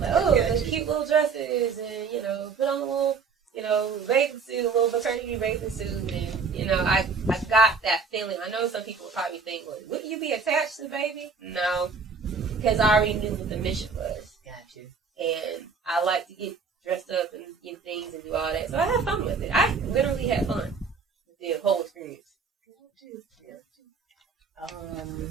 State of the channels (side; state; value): left; quieter; 5.1 dB